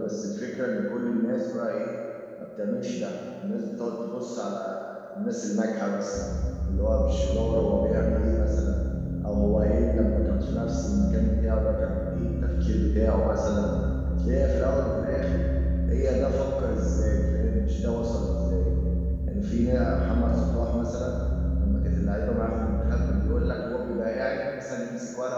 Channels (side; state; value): both; identical; correlation 1.00